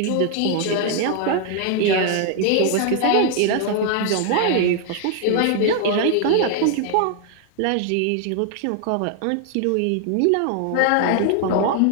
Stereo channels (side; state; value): both; different; correlation 0.00